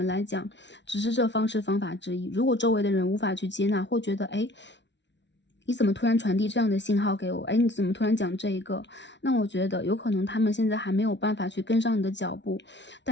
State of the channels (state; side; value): late; right; 0.52 ms